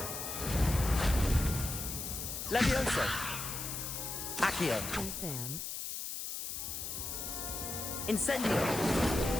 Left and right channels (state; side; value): noise; left; hiss, 5 dB below the sound